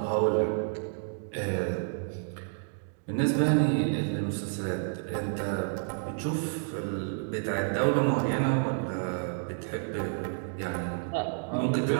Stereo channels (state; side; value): silent; left; digital silence